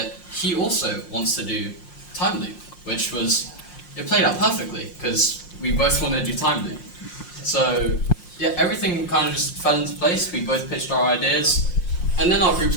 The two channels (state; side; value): late; right; 5.6 ms